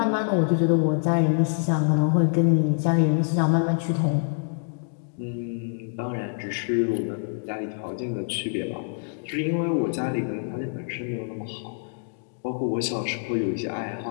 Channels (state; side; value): silent; right; digital silence